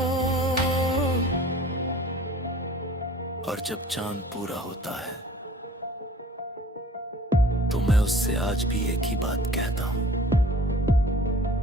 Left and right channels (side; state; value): both; normal; correlation 0.48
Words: और जब चांद पूरा होता है तो मैं उससे आज भी एक ही बात कहता हूं,